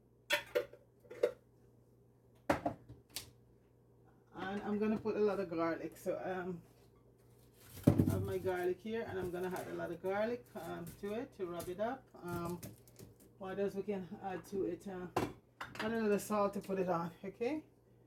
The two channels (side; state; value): both; identical; correlation 1.00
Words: And I'm gonna put a lot of garlic. So I have my garlic here, and I'm gonna add a lot of garlic to it to rub it up. What else we can add to it? Add a little salt to put it on. Okay.